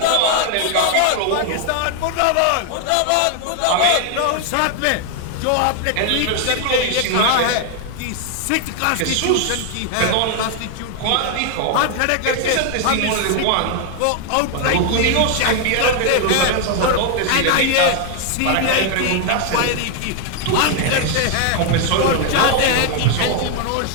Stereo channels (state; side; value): different; both; correlation 0.00